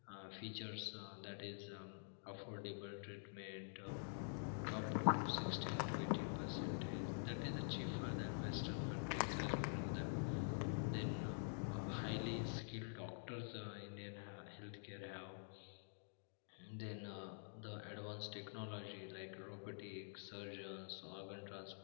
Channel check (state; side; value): silent; right; digital silence